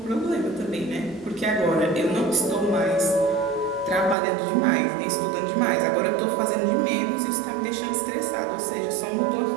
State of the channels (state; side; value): drops out; left; at 4.2 s